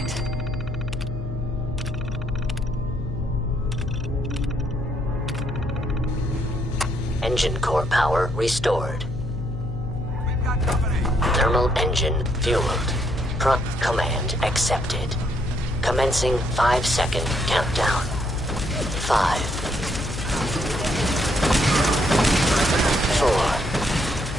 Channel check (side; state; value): left; noise; hum, 6 dB below the sound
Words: it. Engine core power restored. Thermal engine fueled. Prompt command accepted. Commencing 5-second countdown. 5, 4,